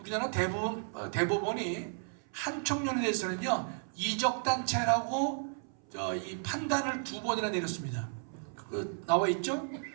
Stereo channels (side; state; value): left; silent; 55 dB below the other